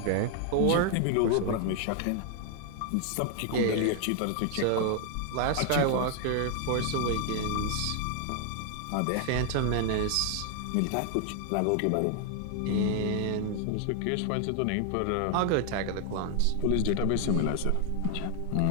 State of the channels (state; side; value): different; both; correlation 0.00